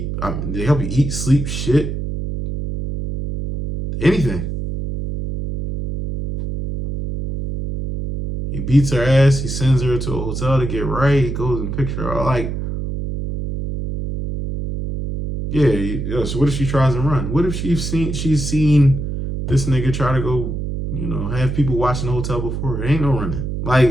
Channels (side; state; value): right; noise; hum, 4 dB below the sound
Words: They help you eat, sleep, shit, anything. He beats her ass. He sends her to a hotel to get right. He goes and picks her. Like, yeah. So what if she tries to run? What if she's seen this nigga try to go, have people watching the hotel before her? Ain't no running. Like,